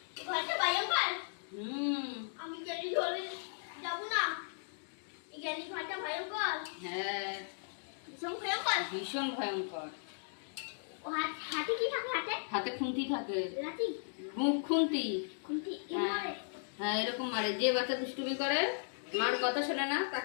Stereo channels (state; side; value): silent; right; digital silence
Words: ঘরটা ভয়ঙ্কর? আমি জ্ঞানী ঘরে যাবো না। জ্ঞানী ঘরটা ভয়ঙ্কর? হ্যাঁ ভীষণ ভয়ঙ্কর। ভীষণ ভয়ঙ্কর। ও হাতে কি থাকে? হাতে হাতে খুন্তি থাকে, লাঠি, মুখ খুন্তি। খুন্তি হ্যাঁ হ্যাঁ এরকম মারে। যে বাচ্চা দুষ্টুমি করে, মার কথা শোনে না,